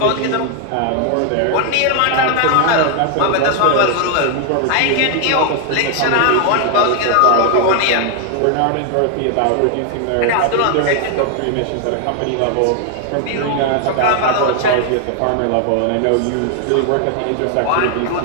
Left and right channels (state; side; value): different; both; correlation 0.00